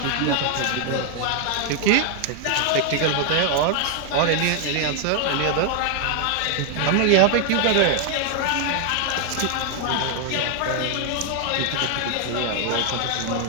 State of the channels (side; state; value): both; different; correlation 0.01